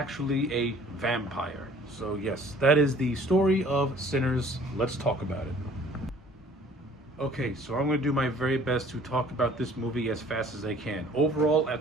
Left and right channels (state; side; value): normal; both; correlation 0.53